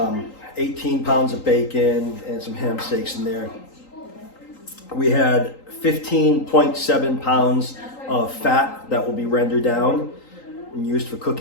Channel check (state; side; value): late; right; 3.8 ms